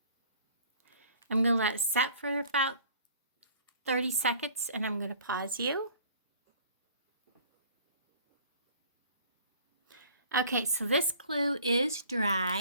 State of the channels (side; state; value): both; inverted; correlation -0.50